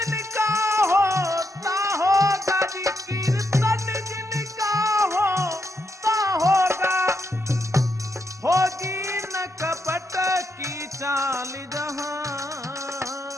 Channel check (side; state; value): both; normal; correlation 0.81